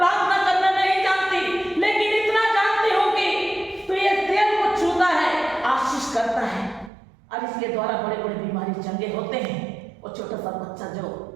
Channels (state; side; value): drops out; left; at 6.9 s